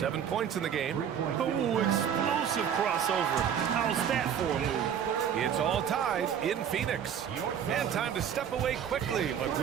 points in the game. Oh, explosive crossover. How's that for a move? It's all tied in Phoenix. And time to step away quickly, but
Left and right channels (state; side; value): quieter; left; 8.6 dB